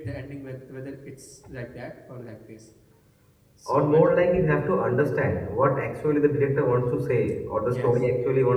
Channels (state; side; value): identical; both; correlation 1.00